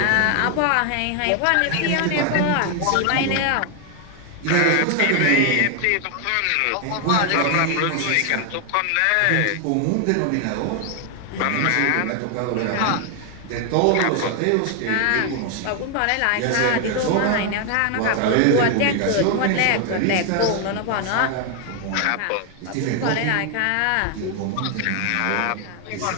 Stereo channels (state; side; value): different; both; correlation 0.01